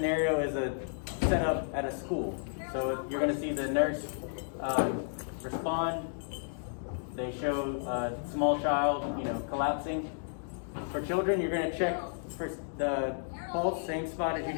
is a setup at a school. So you're going to see the nurse respond. They show a small child, collapsing. For children, you're going to check for the pulse, same spot as you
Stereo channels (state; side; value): silent; right; digital silence